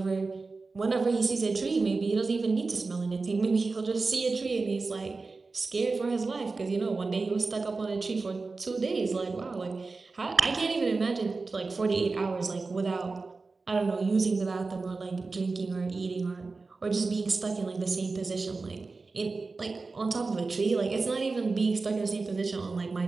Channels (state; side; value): quieter; left; 3.9 dB